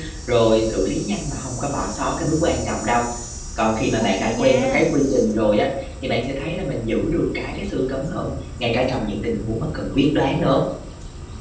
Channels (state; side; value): identical; both; correlation 1.00